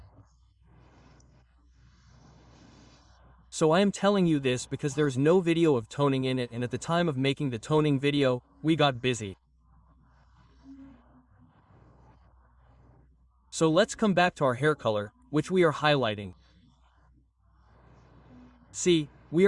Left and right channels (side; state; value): both; identical; correlation 1.00